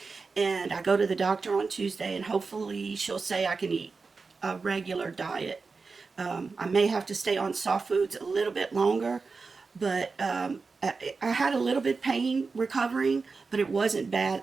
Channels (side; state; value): left; quieter; 4.4 dB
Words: And I go to the doctor on Tuesday, and hopefully she'll say I can eat a regular diet. I may have to stay on soft foods a little bit longer, but I had a little bit pain recovering, but it wasn't bad